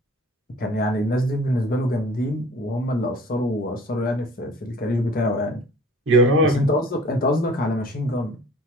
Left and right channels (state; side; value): normal; both; correlation 0.47